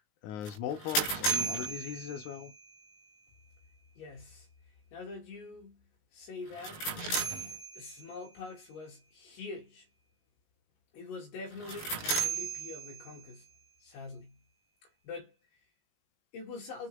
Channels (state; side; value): late; right; 19 ms